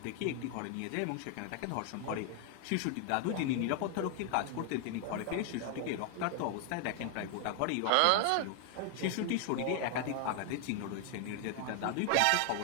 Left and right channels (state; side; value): different; both; correlation 0.00